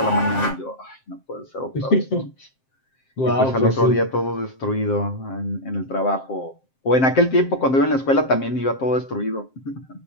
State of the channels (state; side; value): late; right; 7.6 ms